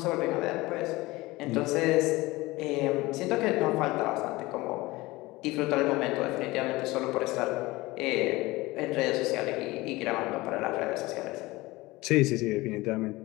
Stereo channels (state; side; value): quieter; right; 20.5 dB